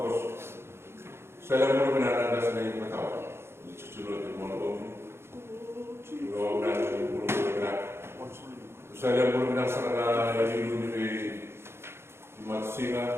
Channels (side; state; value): left; late; 0.12 ms